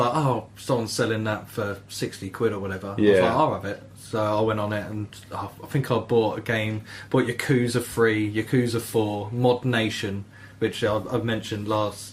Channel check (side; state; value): both; identical; correlation 1.00